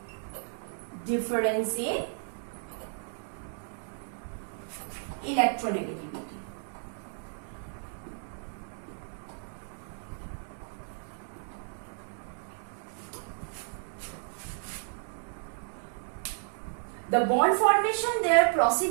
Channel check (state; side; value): silent; left; 56 dB below the other